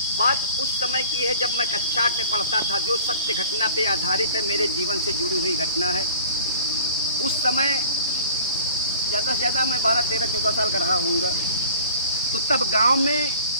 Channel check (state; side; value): inverted; both; correlation -0.45